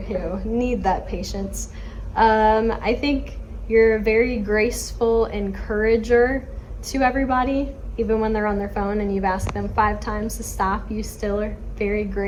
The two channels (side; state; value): both; identical; correlation 1.00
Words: who need that patience. I think you're a very graceful encourager to everybody. Even when they're on their phone and you've asked them 5 times to stop, you still are very